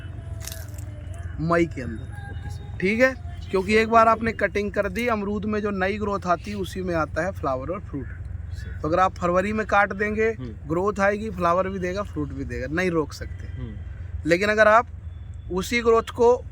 मई के अंदर। ठीक है, क्योंकि एक बार आपने कटिंग कर दी, अमरूद में जो नई ग्रोथ आती है उसी में आता है फ्लावर और फ्रूट। तो अगर आप फरवरी में काट देंगे, ग्रोथ आएगी, फ्लावर भी देगा, फ्रूट भी देगा, नहीं रोक सकते। लेकिन अगर आप उसी ग्रोथ को,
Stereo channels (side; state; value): both; identical; correlation 1.00